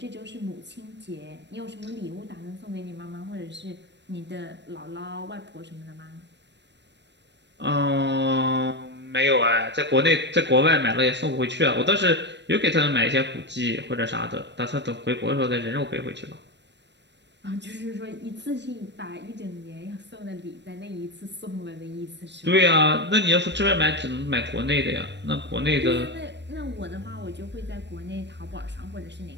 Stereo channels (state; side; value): late; left; 0.51 ms